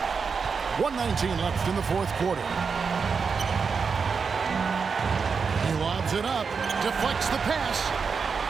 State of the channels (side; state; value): left; quieter; 5.5 dB